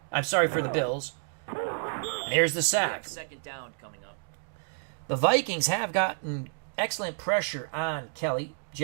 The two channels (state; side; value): silent; left; digital silence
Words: the Bills. There's the We sack. have 2nd down coming up. The Vikings have gotten excellent pressure on Kelly.